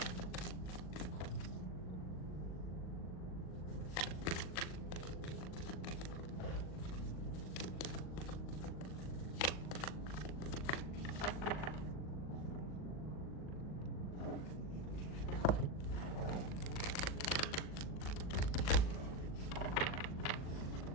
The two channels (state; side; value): late; right; 39 ms